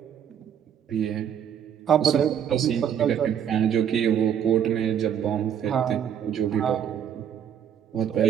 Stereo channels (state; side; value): quieter; left; 8.8 dB